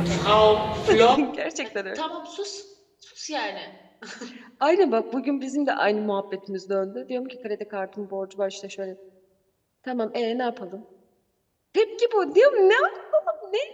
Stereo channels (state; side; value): identical; both; correlation 1.00